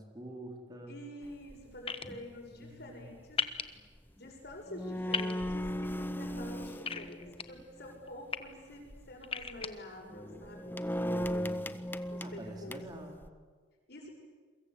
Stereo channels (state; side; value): normal; both; correlation 0.62